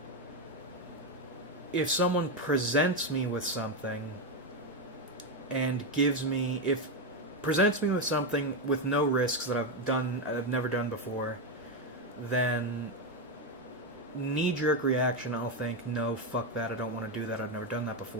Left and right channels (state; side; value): normal; both; correlation 0.07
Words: if someone presents me with something and presents me with something with no risks that I've never done before, then knee-jerk reaction, I'll think, no, fuck that, I don't want to do that, I've never done that